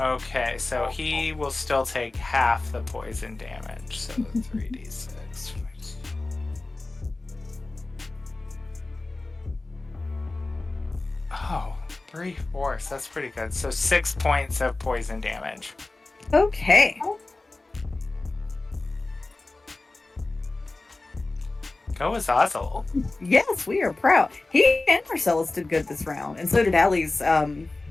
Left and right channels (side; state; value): right; quieter; 3.2 dB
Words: Okay, so he will still take half the poison damage, so 3d6. Oh, 3/4. That's pretty good. So 6 points of poison damage. Okay. Go Azazel. Yes, we are proud. He and Marcellus did good this round, and so did Allie's